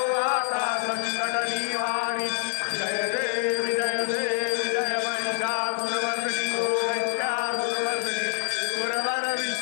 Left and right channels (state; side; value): silent; right; 59 dB below the other